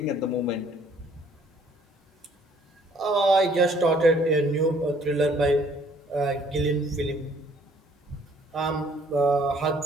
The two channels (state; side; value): normal; both; correlation 0.60